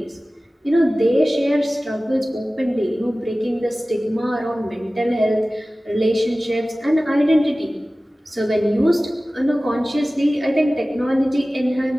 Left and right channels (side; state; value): both; normal; correlation 0.97